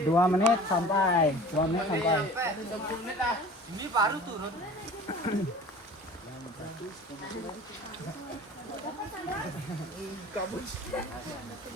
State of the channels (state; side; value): normal; both; correlation 0.42